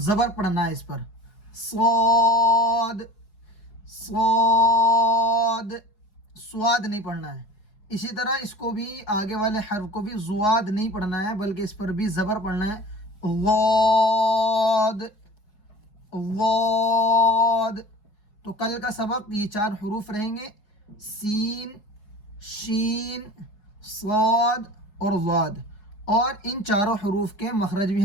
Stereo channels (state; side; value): late; right; 4.7 ms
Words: زبر پڑھنا ہے اس پر، صاد، صاد، سواد نہیں پڑھنا ہے۔ اسی طرح اس کو بھی آگے والے حرف کو بھی زواد نہیں پڑھنا ہے بلکہ اس پر بھی زبر پڑھنا ہے، ضاد، ضاد۔ تو کل کا سبق یہ 4 حروف رہیں گے، سین، شین، صاد اور ضاد، اور ان 4 حروف کے مخرج بھی